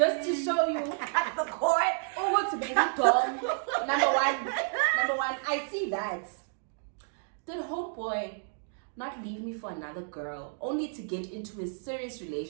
to show you at the court, over to baby dog. Number one, I see that. Did homeboy not leave me for another girl, only to get into a serious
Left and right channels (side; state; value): left; silent; digital silence